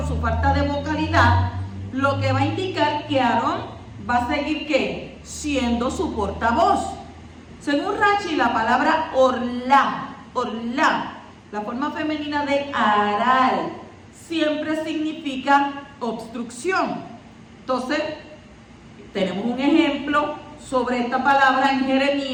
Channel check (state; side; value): identical; both; correlation 1.00